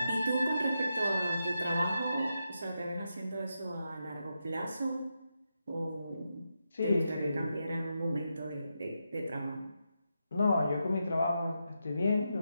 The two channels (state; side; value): inverted; both; correlation -0.86